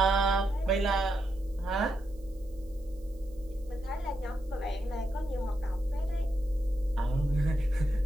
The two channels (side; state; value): right; noise; hiss, 30 dB below the sound